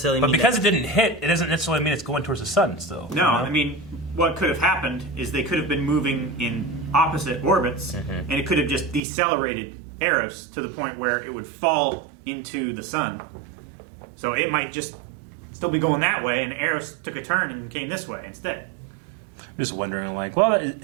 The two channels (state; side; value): drops out; left; at 9.0 s